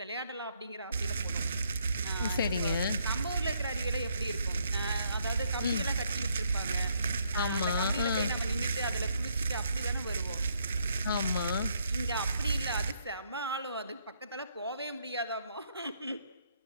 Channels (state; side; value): inverted; both; correlation -0.71